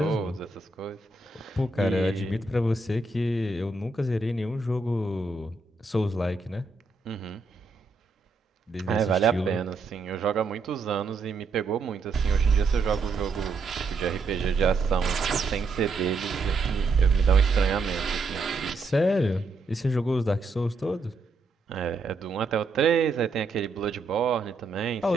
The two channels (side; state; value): left; quieter; 3.7 dB